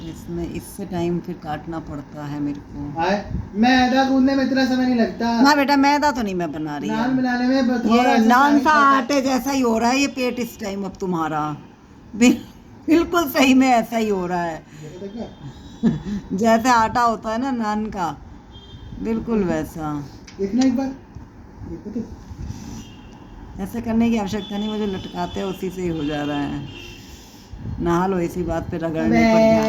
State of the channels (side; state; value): both; identical; correlation 1.00